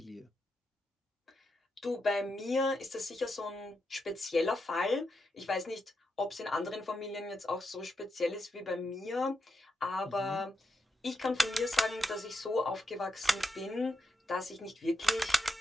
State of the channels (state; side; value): normal; both; correlation 0.85